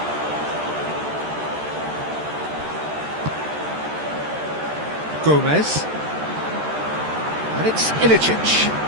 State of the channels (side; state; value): left; late; 13 ms